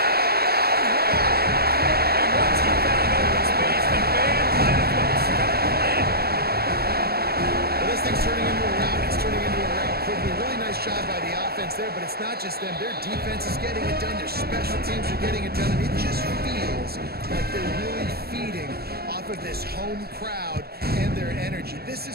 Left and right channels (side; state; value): left; late; 0.46 ms